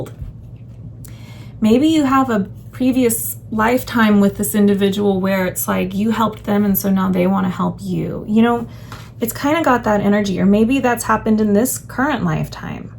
maybe you have a previous lifetime with this individual where it's like you helped them and so now they want to help you. You know, it's kind of got that energy, or maybe that's happened in this current lifetime.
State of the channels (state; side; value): identical; both; correlation 1.00